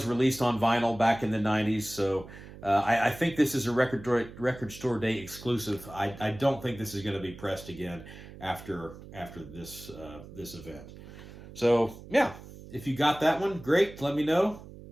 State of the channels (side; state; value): right; noise; hum, 16 dB below the sound